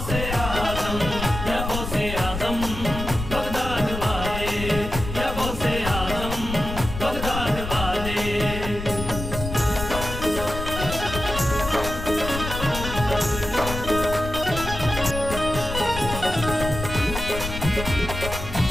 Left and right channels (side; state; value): left; noise; rumble, 6 dB below the sound